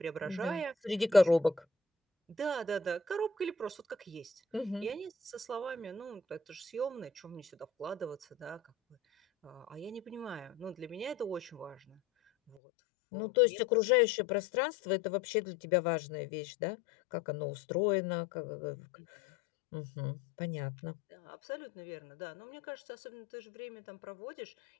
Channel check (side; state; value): right; drops out; at 12.6 s